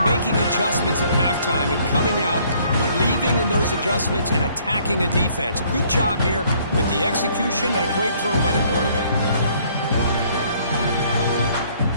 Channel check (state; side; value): inverted; both; correlation -0.62